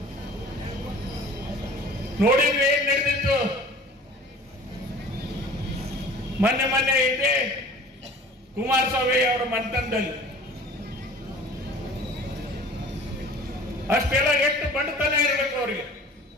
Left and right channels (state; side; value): normal; both; correlation 0.45